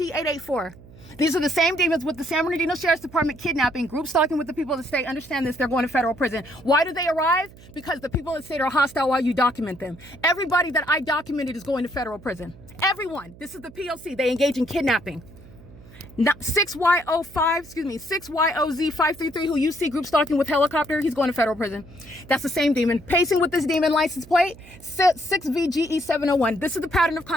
These are the same demons with the San Bernardino Sheriff's Department kidnapping, group stalking with the people of the state. Understand this, they're going to federal prison. Why do they arrive? Because the people of the state are hostile while you document them. Everybody that I documented is going to federal prison. Everyone. This is the P.O.C. They engage in kidnapping. 6YOZ533 who you see group stalking with helicopter, he's going to federal prison. That's the same demon. Pacing with this demon license plate, 6VGE701. This is the pattern of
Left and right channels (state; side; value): noise; right; hum, 21 dB below the sound